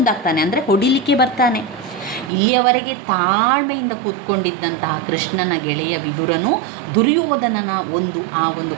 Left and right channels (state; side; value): drops out; left; at 2.3 s